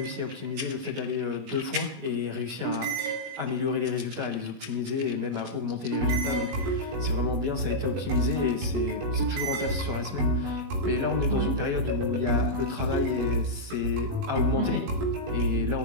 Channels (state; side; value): late; left; 21 ms